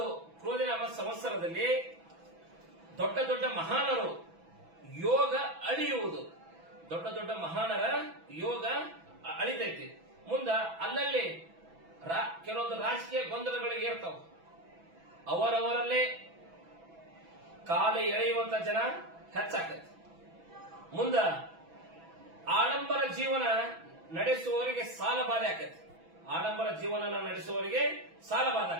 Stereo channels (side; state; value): left; late; 6.0 ms